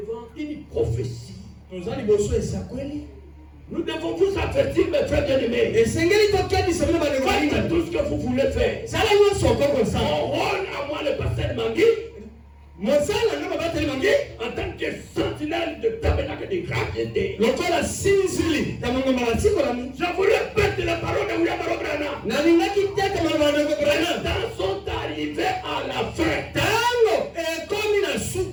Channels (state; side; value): identical; both; correlation 1.00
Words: une prophétie. Nous devons vous avertir, mes frères bien-aimés. Faites tout ce que vous voulez faire. Mon rôle à moi, le pasteur Mangui, en tant que sentinelle de tabernacle de gravité, je vous répète la parole de William Branham. Les temps sont arrivés à la fin. Les